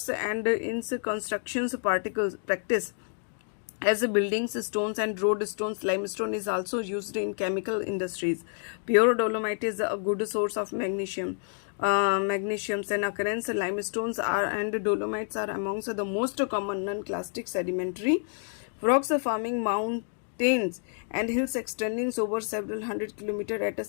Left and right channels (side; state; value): right; silent; 59 dB below the other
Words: and in constructions particles practice. As buildings, stones and road stones, limestone is also used in chemical industries. Pure dolomite is a good source of magnesium. Magnesiums and occurrence limestones and dolomites are amongst the most common non-clastic sedimentary rocks forming mountains and hills extending over several hundred kilometers at a